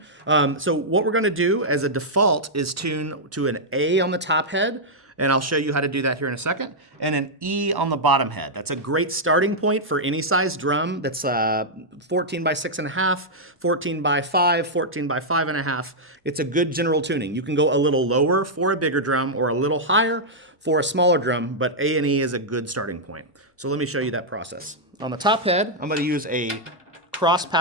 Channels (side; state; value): both; normal; correlation -0.06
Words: So what we're going to do as a default is tune to an A on the top head, and I'll show you how to do that here in a second, and an E on the bottom head. That's a great starting point for any size drum that's 14 by 6.5, 14 by 5, 14 by 5.5. It's a good general tuning. You can go a little lower for a bigger drum or a little higher for a smaller drum, but A and E is a good starting point. So let me show you that process. On the top head, I'm going to use a cross